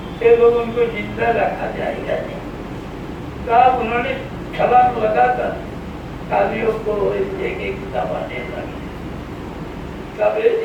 तो लोग उनको जिंदा रखा जाएगा नहीं। तब उन्होंने छलांग लगाकर कालियों को एक एक दबाने लगे। तब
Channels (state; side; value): identical; both; correlation 1.00